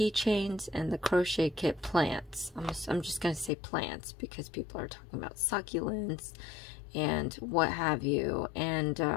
and the crochet kit plants. I'm just going to say plants because people are talking about succulents and what have you. And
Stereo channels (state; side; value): drops out; right; at 3.5 s